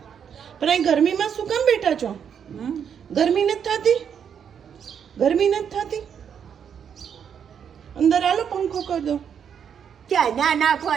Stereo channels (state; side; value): quieter; left; 7.8 dB